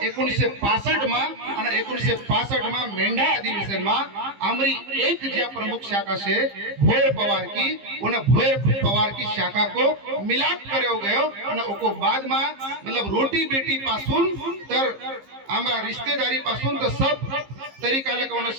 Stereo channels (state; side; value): late; left; 15 ms